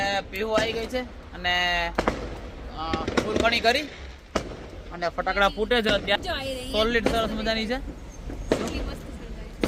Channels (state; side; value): identical; both; correlation 1.00